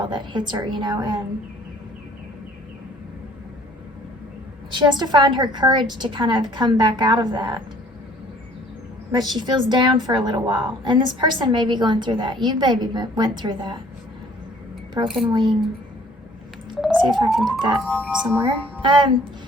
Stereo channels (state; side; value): normal; both; correlation 0.56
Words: that hits her, you know, and she has to find her courage to kind of come back out of that. But she feels down for a little while. And this person may be going through that. You maybe went through that. Broken wing. Let's see if I can put that somewhere.